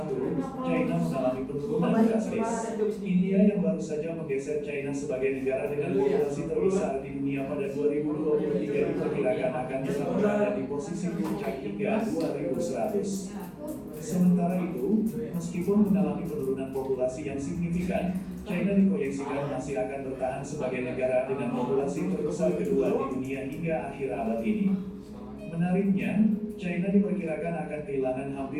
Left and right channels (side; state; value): both; identical; correlation 1.00